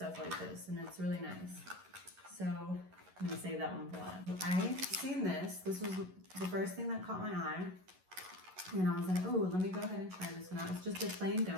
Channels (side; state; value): left; late; 11 ms